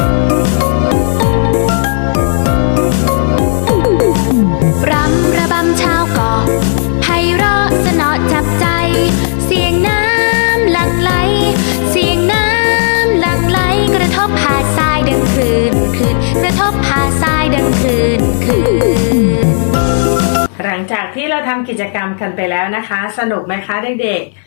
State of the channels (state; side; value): silent; right; digital silence